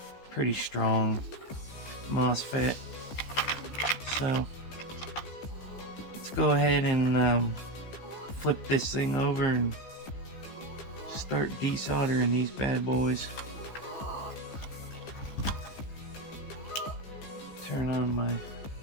pretty strong MOSFET. So let's go ahead and flip this thing over and start desoldering these bad boys. Turn on my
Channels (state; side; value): late; right; 15 ms